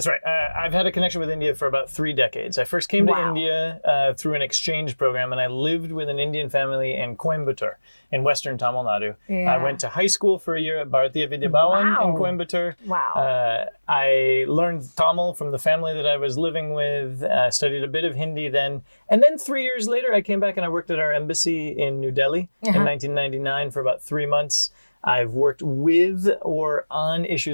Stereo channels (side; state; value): both; inverted; correlation -1.00